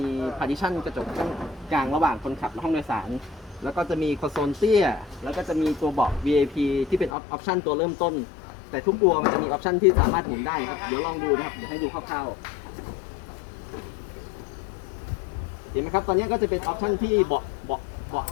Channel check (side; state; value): right; drops out; at 7.2 s